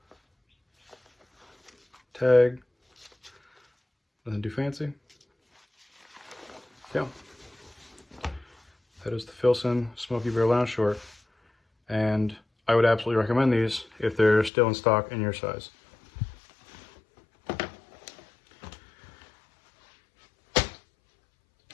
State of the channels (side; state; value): right; drops out; at 14.5 s